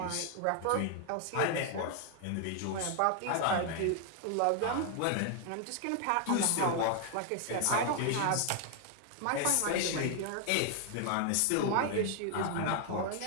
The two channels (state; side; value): different; both; correlation 0.00